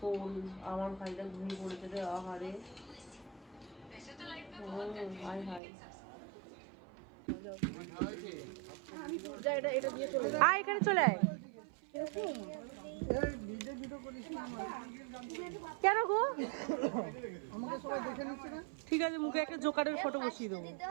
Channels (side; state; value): left; drops out; at 5.6 s